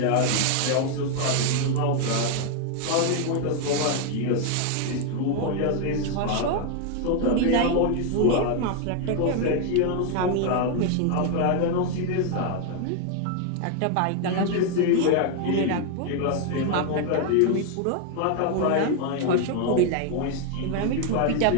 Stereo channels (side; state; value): both; different; correlation 0.00